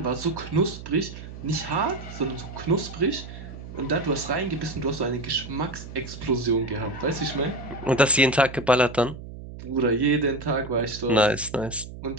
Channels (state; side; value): noise; right; hum, 12 dB below the sound